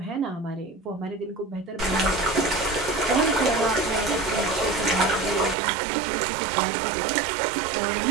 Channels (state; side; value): drops out; left; at 5.6 s